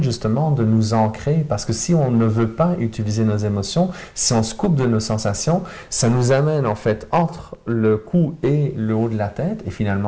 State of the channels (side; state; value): both; identical; correlation 1.00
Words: justement de nous ancrer, parce que si on ne veut pas utiliser nos émotions, si on se coupe de nos sensations, ça nous amène en fait entre le cou et le haut de la tête, et